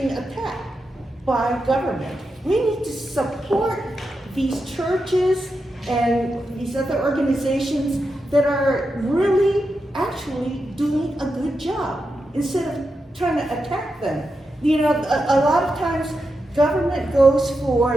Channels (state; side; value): normal; both; correlation 0.88